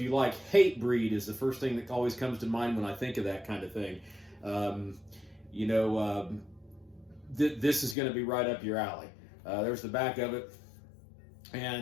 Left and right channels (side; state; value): right; drops out; at 8.0 s